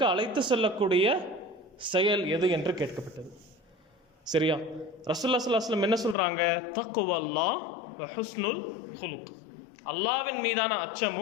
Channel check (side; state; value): right; drops out; at 6.2 s